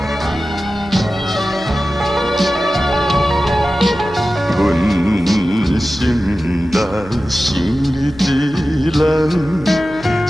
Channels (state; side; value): noise; right; hum, 18 dB below the sound